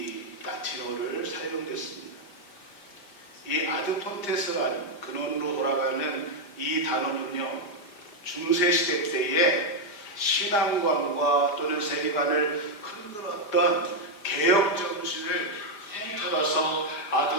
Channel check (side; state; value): right; late; 4.9 ms